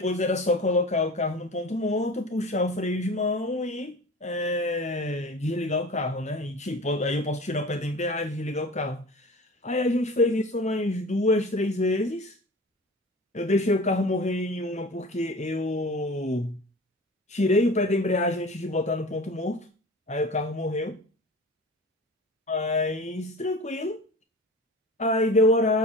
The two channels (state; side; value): normal; both; correlation 0.37